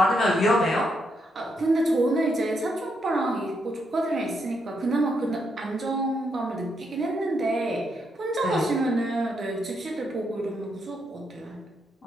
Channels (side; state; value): both; normal; correlation 0.79